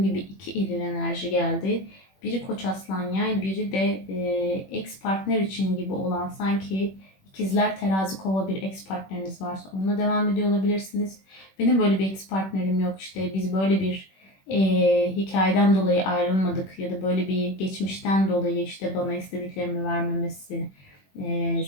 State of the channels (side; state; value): right; late; 21 ms